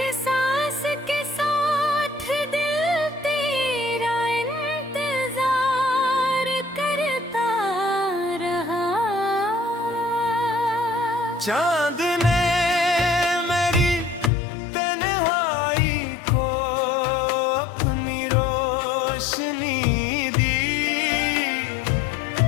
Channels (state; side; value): drops out; right; at 14.3 s